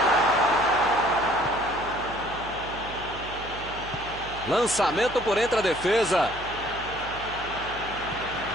Lançamento por entre a defesa.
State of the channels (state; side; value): noise; right; hum, 14 dB below the sound